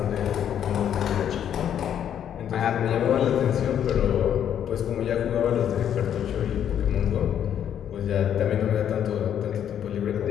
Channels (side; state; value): right; quieter; 9.5 dB